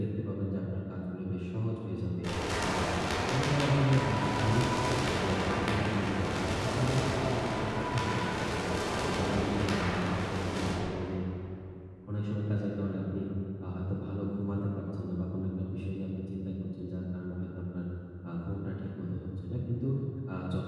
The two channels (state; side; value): identical; both; correlation 1.00